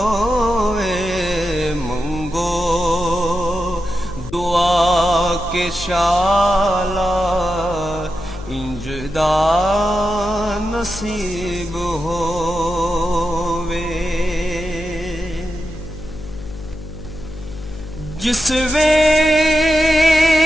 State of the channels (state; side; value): noise; left; hum, 12 dB below the sound